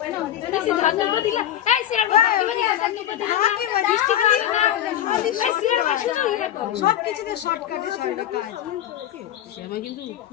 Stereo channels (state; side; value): quieter; right; 11.5 dB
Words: সবকিছুতে শর্টকাটে সারাটা কাজ।